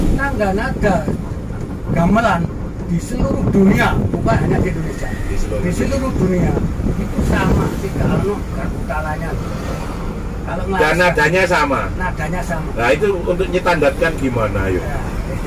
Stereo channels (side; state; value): both; identical; correlation 1.00